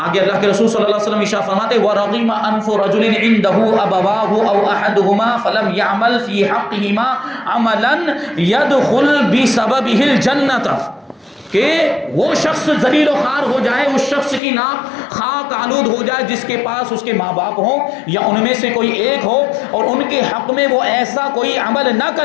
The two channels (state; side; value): drops out; right; at 14.4 s